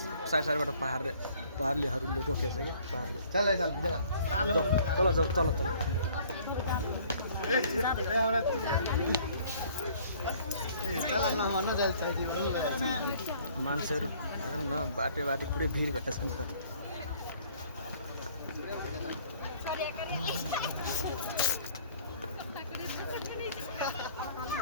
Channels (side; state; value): both; inverted; correlation -0.57